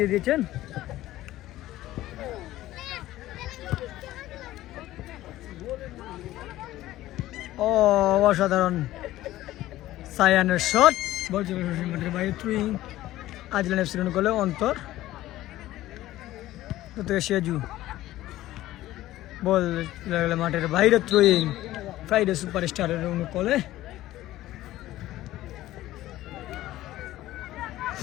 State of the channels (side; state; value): right; quieter; 15.4 dB